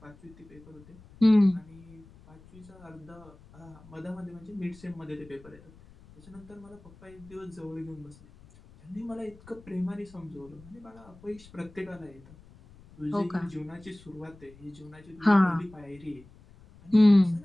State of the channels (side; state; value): left; noise; rumble, 23 dB below the sound